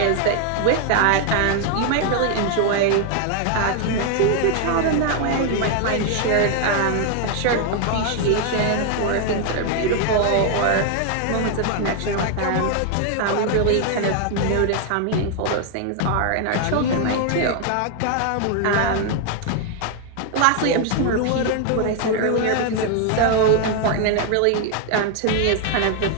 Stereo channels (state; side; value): different; both; correlation 0.00